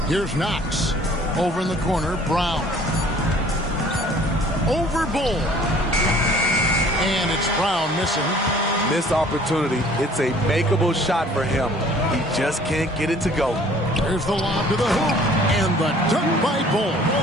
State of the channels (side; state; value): both; normal; correlation 0.53